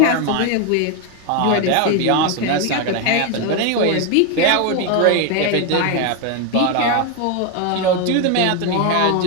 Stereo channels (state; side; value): different; both; correlation 0.02